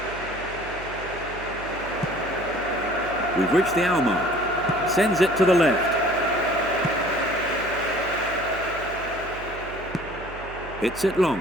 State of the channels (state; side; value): noise; right; hum, 14 dB below the sound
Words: We've reached the hour mark. Sends it to the left. Hits it long.